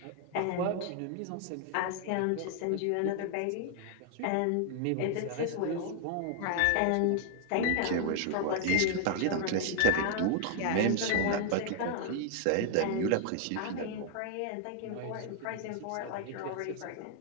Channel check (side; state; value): both; different; correlation 0.00